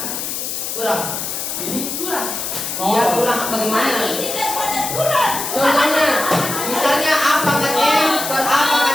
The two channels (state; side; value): noise; left; hiss, 4 dB below the sound